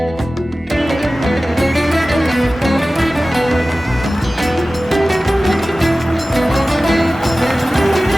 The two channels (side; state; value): both; normal; correlation 0.96